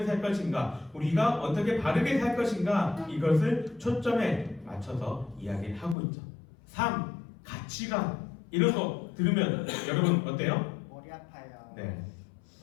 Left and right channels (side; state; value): right; drops out; at 6.0 s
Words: 살 것인가, 우리가 어떻게 바르게 살 것인가, 이것을 초점에 맞춰서 이야기를 하고 있죠. 삶, 가치관 이런 거 들으면 여러분 어때요? 머리 아파요. 네,